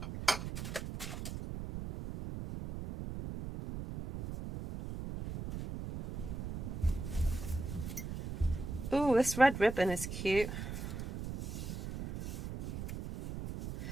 Ooh, this red ribbon is cute.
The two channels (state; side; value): noise; right; rumble, 6 dB below the sound